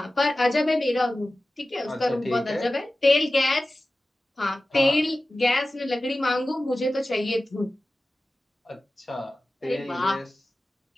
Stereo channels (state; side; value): normal; both; correlation 0.96